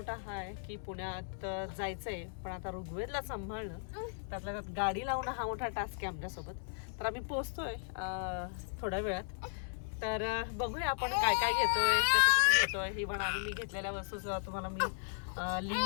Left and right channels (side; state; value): right; silent; digital silence